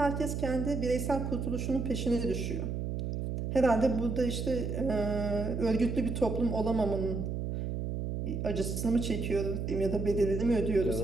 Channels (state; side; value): noise; right; hum, 3 dB below the sound